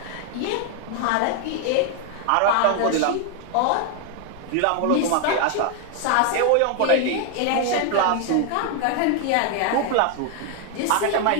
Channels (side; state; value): both; different; correlation 0.00